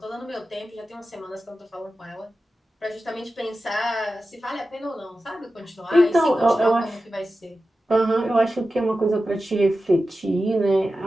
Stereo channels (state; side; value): normal; both; correlation 0.93